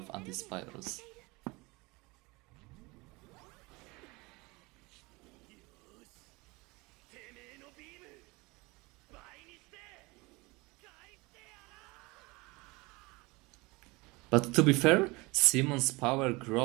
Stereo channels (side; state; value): left; quieter; 24.4 dB